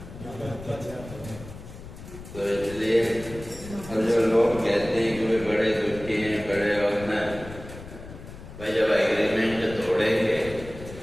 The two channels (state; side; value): noise; left; rumble, 14 dB below the sound